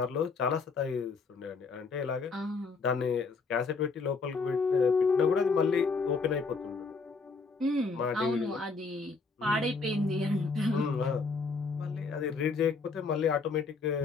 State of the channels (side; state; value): right; quieter; 4.4 dB